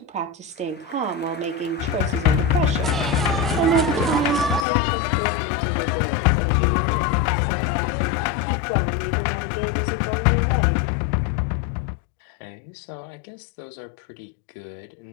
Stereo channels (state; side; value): drops out; right; at 4.7 s